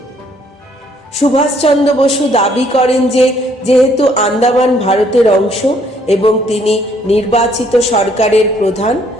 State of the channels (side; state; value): both; normal; correlation 0.66